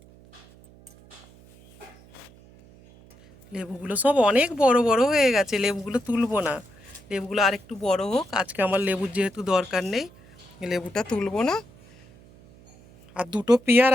লেবুগুলো সব অনেক বড় বড় হয়ে গেছে, লেবুগুলো তুলবো না। লেবুগুলো আর একটু বড় হোক, আজকে আমার লেবুর যেহেতু দরকার নেই, লেবুটা তুলবো না। আর দুটো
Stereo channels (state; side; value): noise; right; hum, 25 dB below the sound